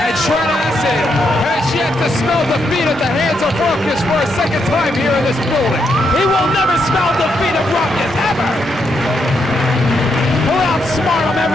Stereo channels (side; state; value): both; normal; correlation 0.79